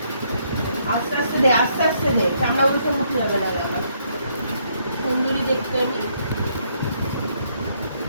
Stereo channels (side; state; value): both; inverted; correlation -0.72